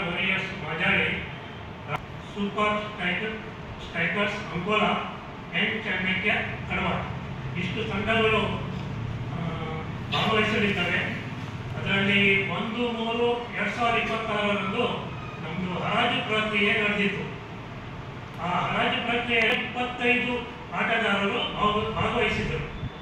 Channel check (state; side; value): identical; both; correlation 1.00